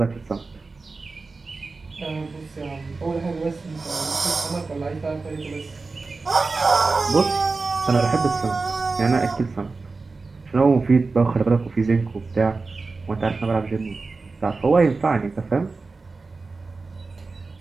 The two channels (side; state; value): left; quieter; 3.9 dB